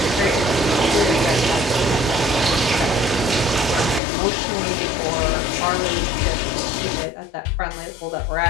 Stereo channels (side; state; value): right; drops out; at 4.0 s